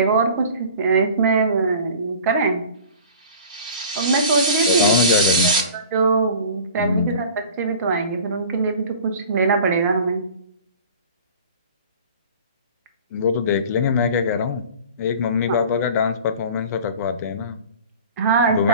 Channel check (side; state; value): both; inverted; correlation -0.42